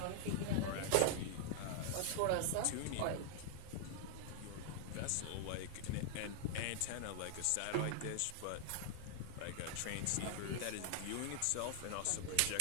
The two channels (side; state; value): both; different; correlation 0.00